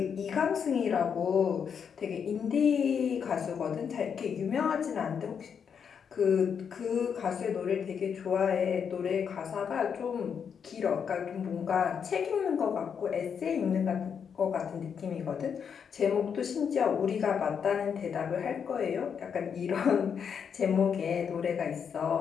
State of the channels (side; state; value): right; quieter; 7.1 dB